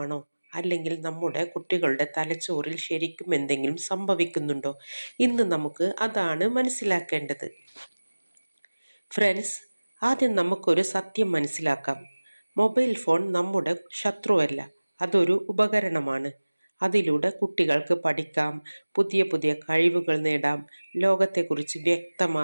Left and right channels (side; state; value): both; inverted; correlation -1.00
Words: അല്ലെങ്കിൽ നമ്മുടെ കുട്ടികളുടെ തലച്ചോറിൽ ശരിക്കും എന്തെങ്കിലും സംഭവിക്കുന്നുണ്ടോ? ഇന്ന് നമുക്ക് അതാണ് മനസ്സിലാക്കേണ്ടത്. ഫ്രണ്ട്സ്, ആദ്യം നമുക്കൊരു സത്യം മനസ്സിലാക്കാം. മൊബൈൽ ഫോൺ നമ്മുടെ ശത്രുവല്ല, അതൊരു ഉപകരണമാണ്. അതിലൂടെ കുട്ടികൾക്ക് പഠിക്കാം, പുതിയ പുതിയ കഴിവുകൾ നേടാം, ലോകത്തെക്കുറിച്ച്